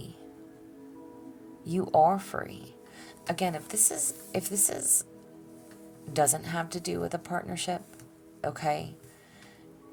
You are free. Again, if this is doesn't have to do with a partnership, okay?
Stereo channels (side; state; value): both; identical; correlation 1.00